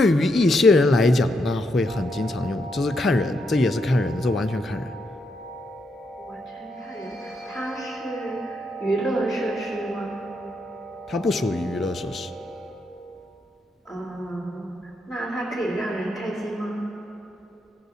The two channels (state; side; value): normal; both; correlation 0.79